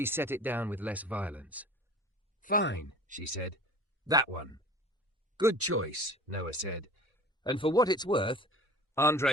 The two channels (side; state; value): both; normal; correlation 0.41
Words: set it down with less violence. Fine, she said. That one. Good choice, Noah said. And for what it's worth,